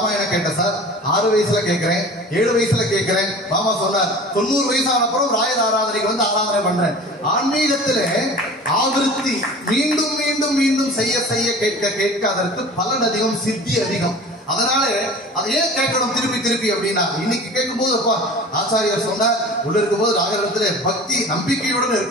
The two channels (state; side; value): normal; both; correlation 0.40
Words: கேட்டேன் சார், 6 வயசுல கேட்கிறேன், 7 வயசுல கேட்கிறேன். மாமா சொன்னார் 90 வயசான அப்புறம் ராயர் ஆராதனைக்கு வந்து ஆராதனை பண்றேன். ஆன்மீகத்துல ஆவிருத்தி மீண்டும் மீண்டும் மீண்டும் செய்ய செய்ய கேட்க கேட்க அதற்கு பலன் அதிகம், சித்தி அதிகம். அதனால அதை ஏன் கேட்கணும் திருப்பி திருப்பி அப்படின்னா, இன்னைக்கு கேட்கும் போது அப்பா ஆச்சாரியர் சொன்னார் உள்ள இருக்கும் போது ராகவத்துல பக்தி நம்பிக்கையுடன்